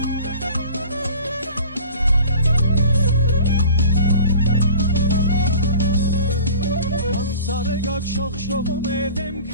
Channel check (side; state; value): both; inverted; correlation -0.43